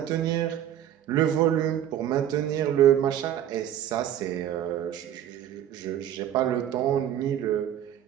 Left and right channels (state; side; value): quieter; left; 10.8 dB